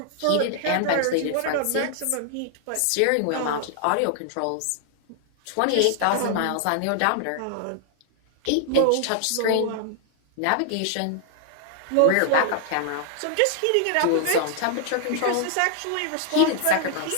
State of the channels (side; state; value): both; different; correlation 0.00